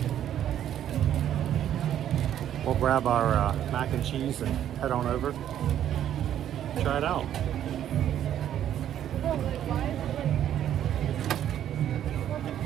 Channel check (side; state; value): left; quieter; 10.7 dB